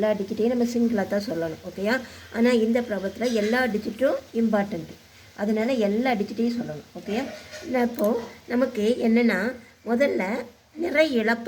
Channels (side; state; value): both; identical; correlation 1.00